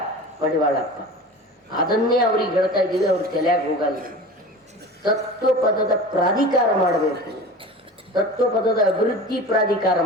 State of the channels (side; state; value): both; normal; correlation 0.35